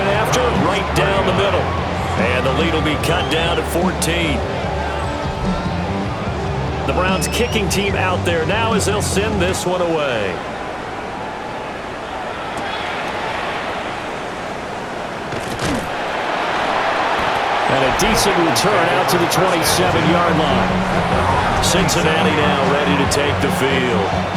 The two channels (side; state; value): both; identical; correlation 1.00